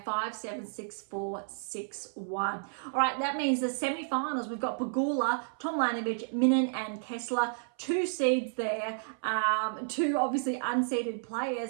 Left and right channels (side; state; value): left; silent; 57 dB below the other